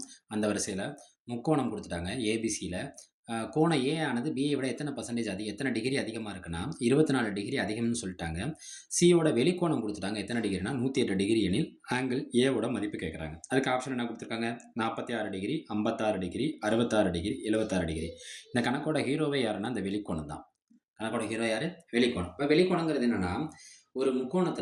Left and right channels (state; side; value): identical; both; correlation 1.00